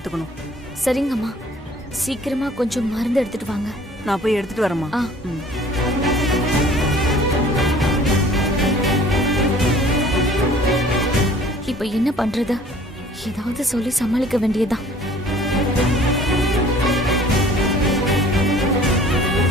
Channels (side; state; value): both; normal; correlation 0.51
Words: சரிங்கம்மா, சீக்கிரமா கொஞ்சம் மருந்து எடுத்துட்டு வாங்க. நான் போய் எடுத்துட்டு வரேம்மா. இப்ப என்ன பண்றது? ஏதாவது சொல்லி சமாளிக்க வேண்டியதுதான்.